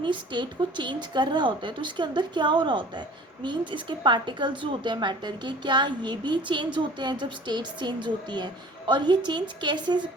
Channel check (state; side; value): normal; both; correlation 0.47